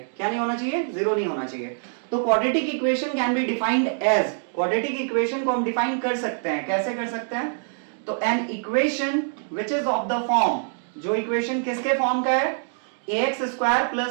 क्या नहीं होना चाहिए, 0 नहीं होना चाहिए. तो quadratic equation can be defined as, quadratic equation को हम डिफाइन कर सकते हैं, कैसे कर सकते हैं, तो an equation which is of the form, जो इक्वेशन किसके फॉर्म का है, ax²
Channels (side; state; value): left; silent; digital silence